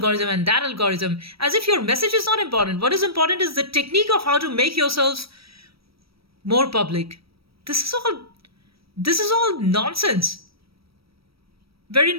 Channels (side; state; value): left; late; 0.75 ms